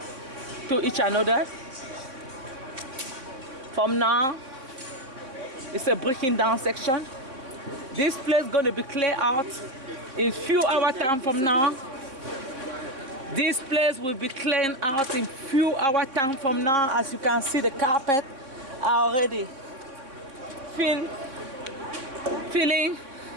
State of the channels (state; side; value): late; left; 3.7 ms